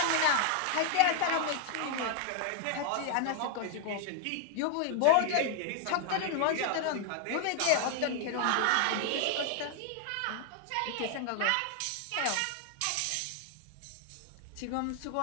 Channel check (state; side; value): different; both; correlation 0.00